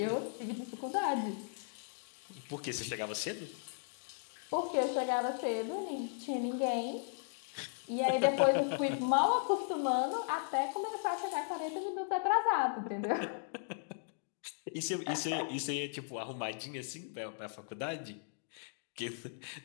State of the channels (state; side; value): silent; right; digital silence